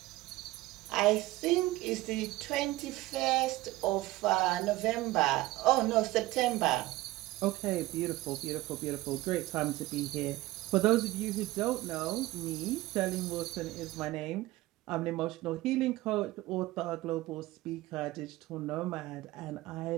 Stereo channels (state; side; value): quieter; left; 18.3 dB